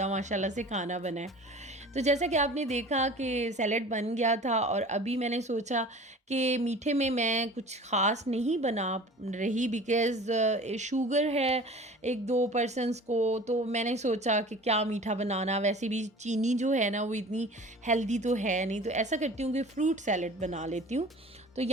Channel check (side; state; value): both; normal; correlation 0.42